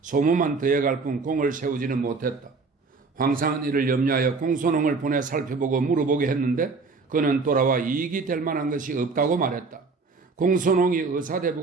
더해갈 뿐 공을 세우지는 못했다. 황상은 이를 염려하여 공소농을 보내 살펴보고 물어보게 했는데 그는 돌아와 이익이 될 만한 것이 없다고 말했다. 공소농이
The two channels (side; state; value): left; quieter; 4.3 dB